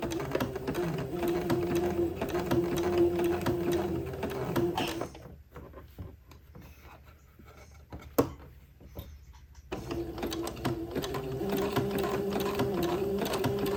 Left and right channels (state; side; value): identical; both; correlation 1.00